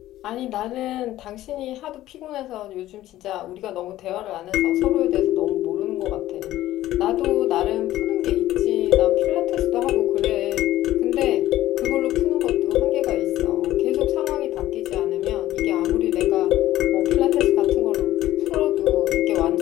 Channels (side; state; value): right; quieter; 14.5 dB